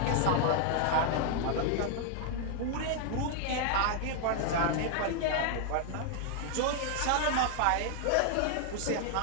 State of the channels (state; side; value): different; both; correlation 0.00